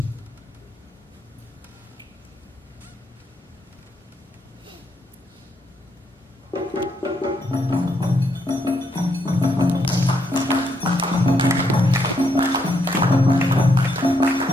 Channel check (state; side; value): normal; both; correlation 0.76